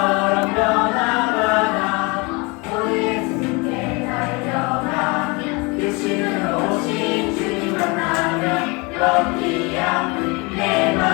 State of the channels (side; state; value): right; quieter; 28.0 dB